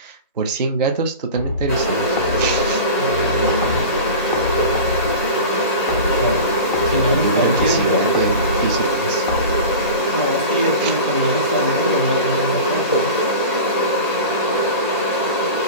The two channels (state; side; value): inverted; both; correlation -0.32